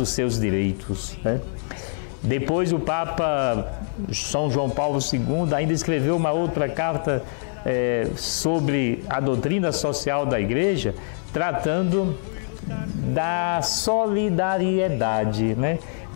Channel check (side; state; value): right; silent; 63 dB below the other